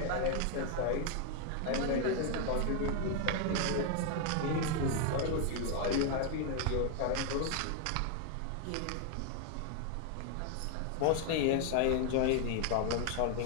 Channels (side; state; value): both; different; correlation 0.00